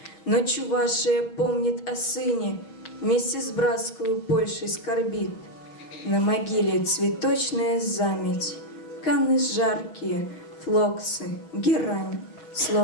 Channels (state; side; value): late; right; 6.3 ms